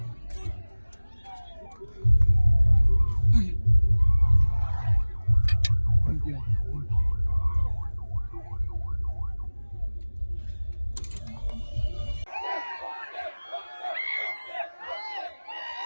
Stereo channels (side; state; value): both; inverted; correlation -1.00